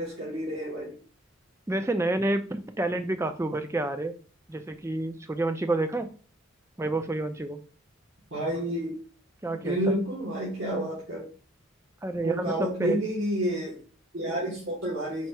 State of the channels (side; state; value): both; normal; correlation 0.59